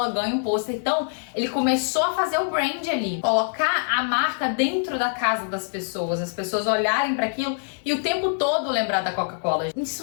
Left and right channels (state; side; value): silent; right; digital silence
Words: ganha um pôster. Então, ele começou a fazer o brand ali, colocar a marca dentro da casa das pessoas, as pessoas olharem para aquilo e o tempo todo lembrar da Coca-Cola.